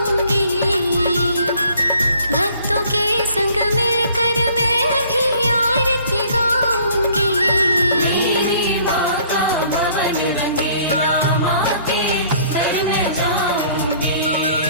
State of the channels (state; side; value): inverted; both; correlation -0.57